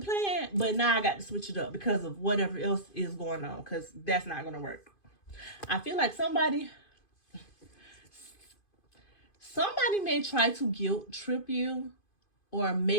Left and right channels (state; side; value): late; right; 2.5 ms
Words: but now I got to switch it up because of whatever else is going on, because that's not going to work. I feel like somebody may try to guilt trip you, or